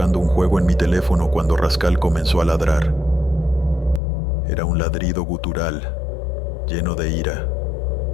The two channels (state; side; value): drops out; right; at 4.0 s